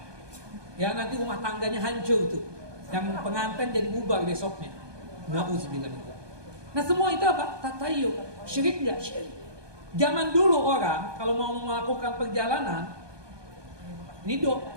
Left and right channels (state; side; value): late; left; 1.2 ms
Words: Ya nanti rumah tangganya hancur tuh. Yang pengantin jadi bubar besoknya. Nauzubillah min dzalik. Nah semua itu apa? Tatayyu. Syirik nggak? Syirik. Zaman dulu orang kalau mau melakukan perjalanan,